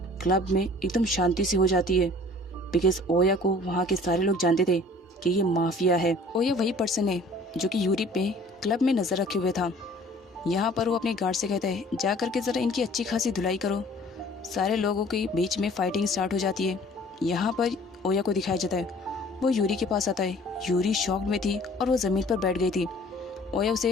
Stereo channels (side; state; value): both; normal; correlation 0.51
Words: क्लब में एकदम शांति सी हो जाती है, बिकॉज ओया को वहाँ के सारे लोग जानते थे कि ये माफिया है। ओया वही पर्सन है जो कि यूरी पे क्लब में नज़र रखे हुए था। यहाँ पर वो अपने गार्ड से कहता है, जा करके ज़रा इनकी अच्छी खासी धुलाई करो। सारे लोगों के बीच में फाइटिंग स्टार्ट हो जाती है। यहाँ पर ओया को दिखाया जाता है, वो यूरी के पास आता है। यूरी शॉक में थी और वो ज़मीन पर बैठ गई थी। ओया